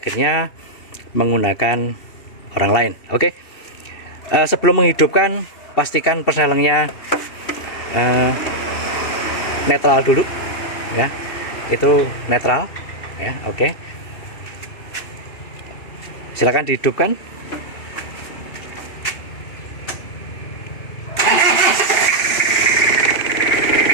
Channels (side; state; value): right; late; 2.7 ms